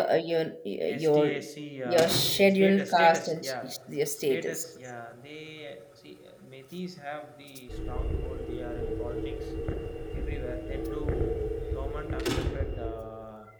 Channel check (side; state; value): both; identical; correlation 1.00